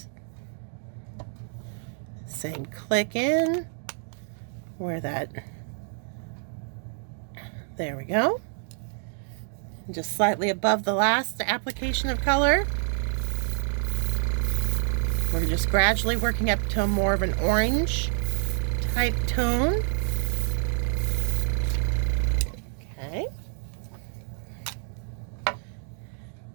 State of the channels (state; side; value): silent; left; 60 dB below the other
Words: Same click in where that, there we go. Just slightly above the last application of color. We're just gradually working up to more of an orange type tone. Okay.